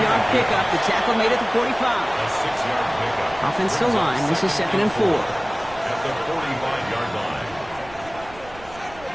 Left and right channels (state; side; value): noise; right; rumble, 20 dB below the sound